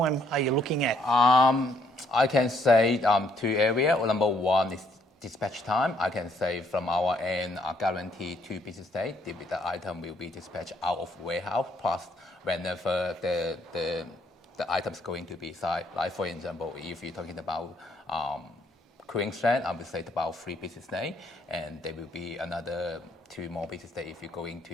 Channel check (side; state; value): both; normal; correlation 0.69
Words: are you looking at? I can say 2 areas. Well, number one is dispatch time. I can say from our end, guarantee 2 business days. The item will be dispatched out of warehouse, plus whenever the item's going to be site. Like for example, if you're talking about Queensland, I would say about 3 business days, and there will be another 2 more business days if you're going